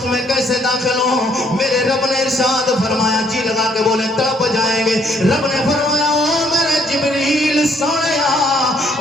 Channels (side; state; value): both; normal; correlation 0.66